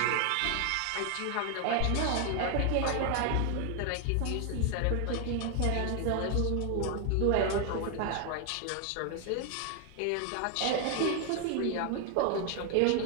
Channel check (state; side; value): different; both; correlation 0.00